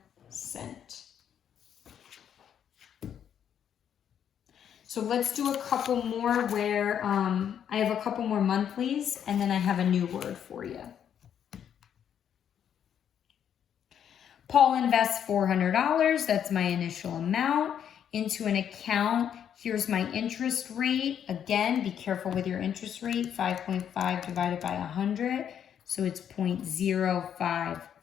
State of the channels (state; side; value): quieter; right; 9.0 dB